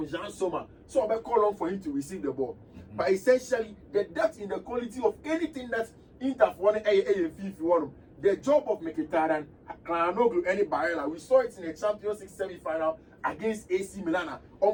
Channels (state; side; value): identical; both; correlation 1.00